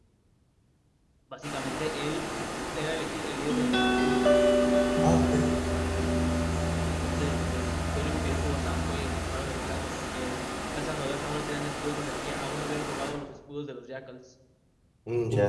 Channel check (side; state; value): both; identical; correlation 1.00